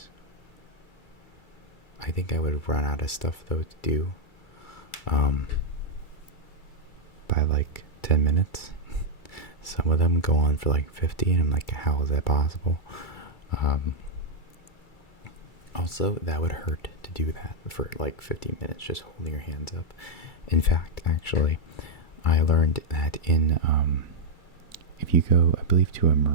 I think I would run out of stuff though to do. By like 10 minutes. Some of them go on for like 50, and I'm like, how is that possible? Also, that would hurt to do that for like 50 minutes, just holding your hands up. In fact, actually, I learned that if you go, I believe, to a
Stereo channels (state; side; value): late; right; 2.3 ms